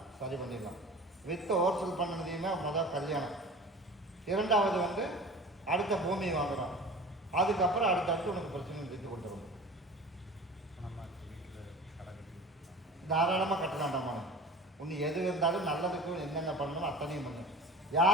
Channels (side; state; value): both; normal; correlation 0.39